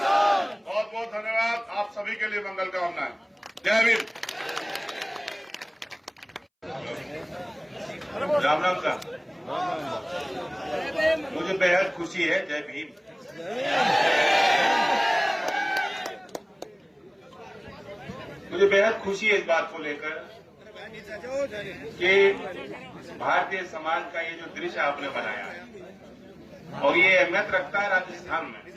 बहुत बहुत धन्यवाद। आप सभी के लिए मंगल कामनाएं। जय भीम। राम राम साहब, मुझे बेहद खुशी है। जय भीम। मुझे बेहद खुशी है इस बात को लेकर कि भारतीय समाज का ये जो दृश्य आपने बनाया है और ये अहमियत रखता है राजस्थान में,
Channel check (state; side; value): identical; both; correlation 1.00